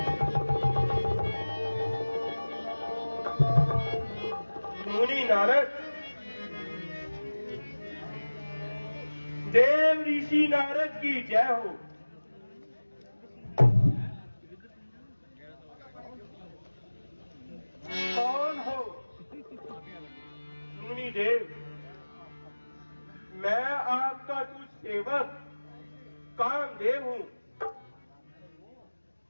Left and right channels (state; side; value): inverted; both; correlation -1.00